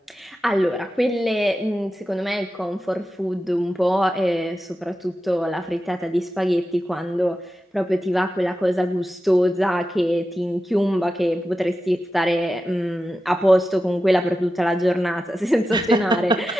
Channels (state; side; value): normal; both; correlation 0.91